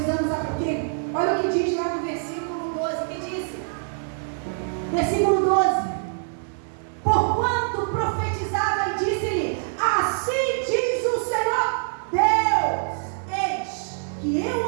sabe por quê? Olha o que diz lá no versículo 12, que disse? Versículo 12. Porquanto profetizava e disse-lhe, assim diz o Senhor Deus, eis que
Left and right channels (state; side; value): silent; left; 62 dB below the other